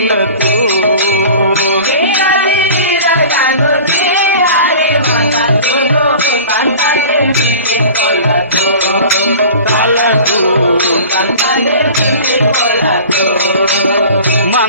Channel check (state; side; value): inverted; both; correlation -0.40